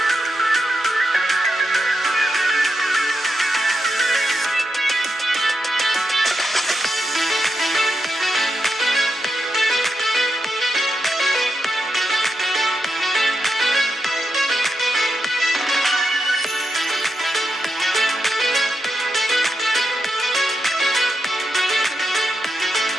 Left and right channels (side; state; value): both; normal; correlation 0.86